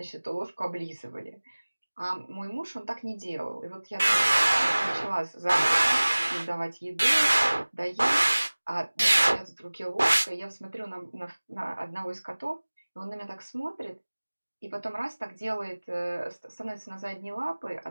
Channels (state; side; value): inverted; both; correlation -1.00